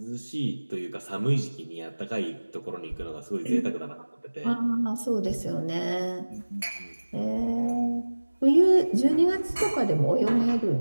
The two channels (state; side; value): inverted; both; correlation -1.00